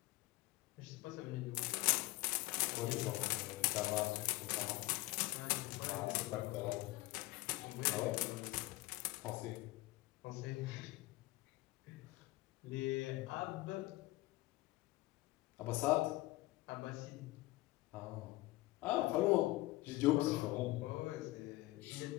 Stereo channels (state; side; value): quieter; right; 19.6 dB